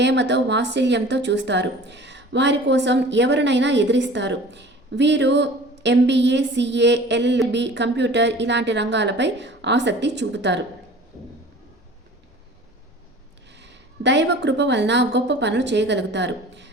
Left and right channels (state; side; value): normal; both; correlation 0.44